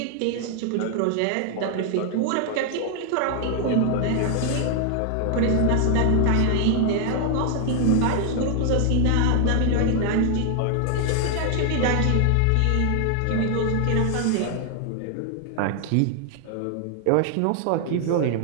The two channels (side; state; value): both; different; correlation 0.00